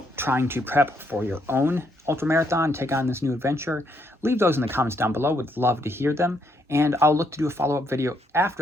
trying to prep for your own ultramarathon, take on this new adventure, leave those in the comments down below. Would love to hear them. And I'll look to do a follow-up video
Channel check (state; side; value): normal; both; correlation 0.74